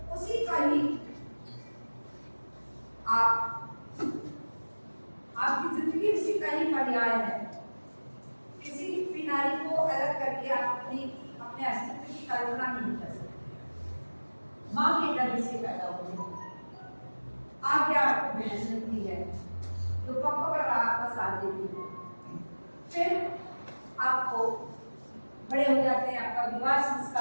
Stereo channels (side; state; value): both; inverted; correlation -1.00